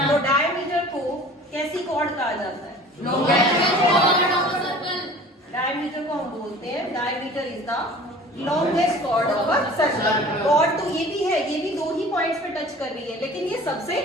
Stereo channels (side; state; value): both; normal; correlation 0.44